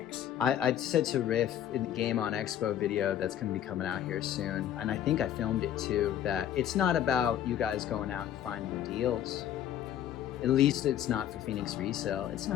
I said to Riff in the Game on Expo video that's going to be coming out here soon, and I think I filmed it too, that it's not about you guys going out and finding deals. At least it's not for Phoenix Resale. It's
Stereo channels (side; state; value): right; quieter; 10.8 dB